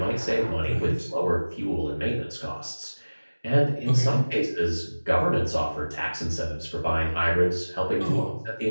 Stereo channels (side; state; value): both; inverted; correlation -1.00